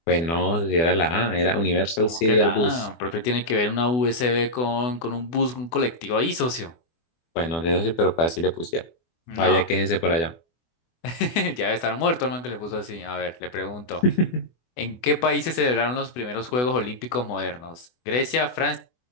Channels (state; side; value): late; right; 24 ms